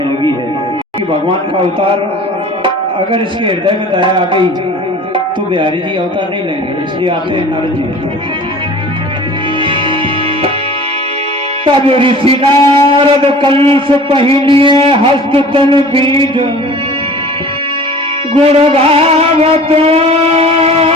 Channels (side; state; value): both; normal; correlation 0.44